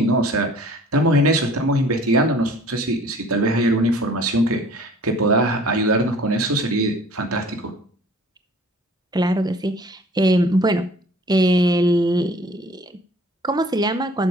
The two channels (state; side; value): normal; both; correlation 0.50